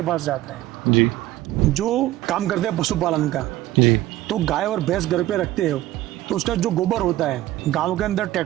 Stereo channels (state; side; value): quieter; left; 15.5 dB